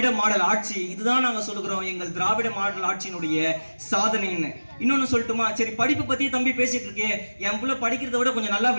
மாடல் ஆட்சி. இதுதான் நாங்க சொல்லுகிறோம் எங்கள் திராவிட மாடல் ஆட்சியினுடைய சாதனைன்னு. இன்னொன்னு சொல்லட்டுமா? சரி, படிப்பு பத்தி தம்பி பேசிட்டு இருக்கே, என் புள்ள படிக்கிறத விட கொஞ்சம் நல்லா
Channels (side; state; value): both; inverted; correlation -1.00